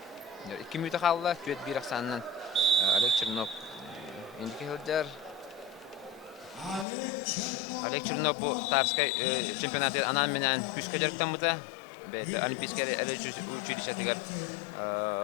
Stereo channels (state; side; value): drops out; right; at 6.9 s